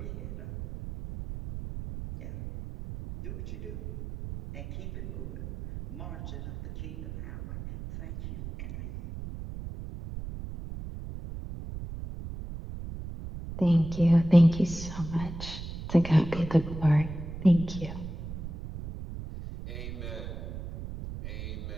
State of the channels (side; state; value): right; noise; rumble, 9 dB below the sound